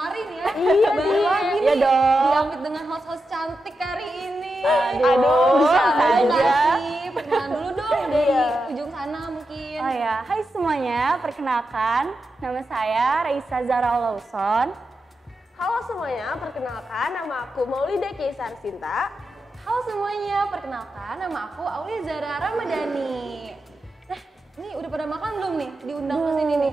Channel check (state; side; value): normal; both; correlation 0.88